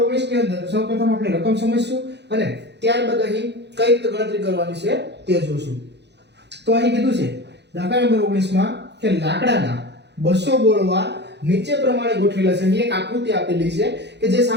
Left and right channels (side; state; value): left; late; 0.50 ms